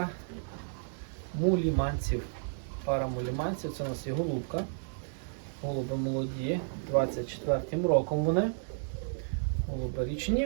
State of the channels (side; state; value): left; silent; digital silence